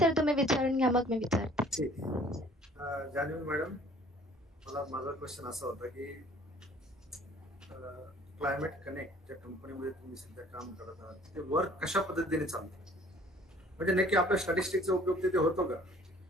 तुम्ही विचारून घ्या, मग मी विचारते. ठीक. जान्हवी मॅडम, मला माझा क्वेश्चन असा होता की क्लायमेट कनेक्ट ज्या कंपनीमध्ये तुम्ही सध्या काम करत आहात, ते वर्क कशा पद्धतीने चालतं, म्हणजे नक्की आपल्या स्टॅटिस्टिक्सचा उपयोग तिथे होतो का?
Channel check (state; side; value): normal; both; correlation 0.54